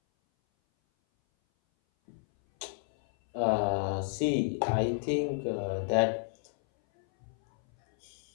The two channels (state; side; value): silent; right; 57 dB below the other